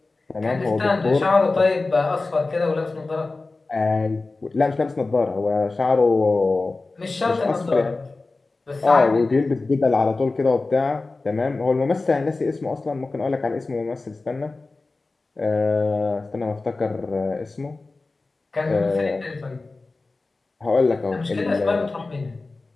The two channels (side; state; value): right; quieter; 3.5 dB